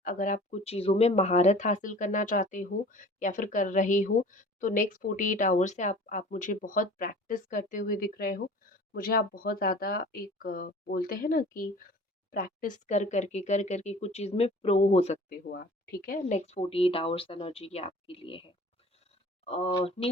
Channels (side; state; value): both; normal; correlation 0.45